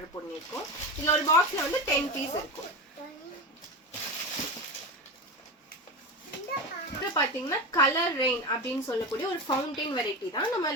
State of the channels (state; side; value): normal; both; correlation 0.21